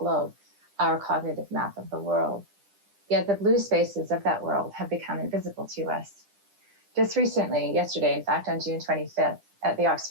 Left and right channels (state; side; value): late; left; 10 ms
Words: our cognitive map of the world. Yet the blue spaces of that world have become invisible to us. Just recently, yesterday, in fact, on June 25th, at the